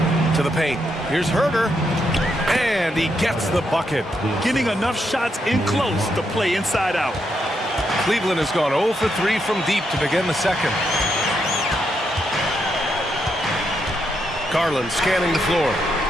To the paint. Here's Herder. And he gets the bucket. Getting enough shots in close to play inside out. Cleveland has gone 0 for 3 from deep to begin the second. Garland scanning the floor.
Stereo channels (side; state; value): both; normal; correlation 0.80